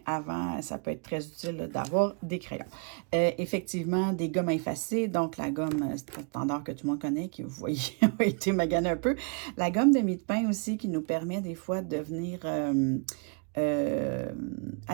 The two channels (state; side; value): quieter; left; 37.0 dB